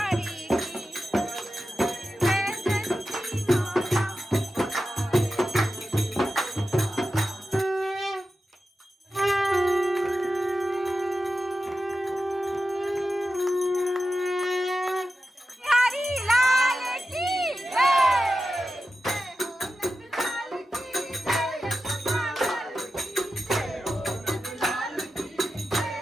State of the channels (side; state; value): both; normal; correlation 0.92